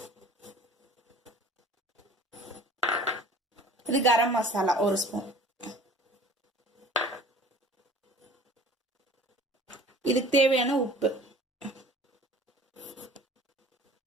இது கரம் மசாலா 1 ஸ்பூன். இதுக்கு தேவையான உப்பு.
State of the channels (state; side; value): normal; both; correlation 0.47